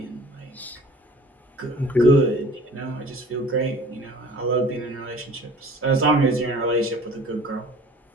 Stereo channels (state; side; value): normal; both; correlation 0.47